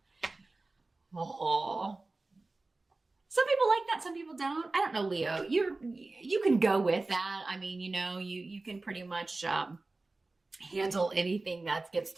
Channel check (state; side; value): quieter; left; 3.3 dB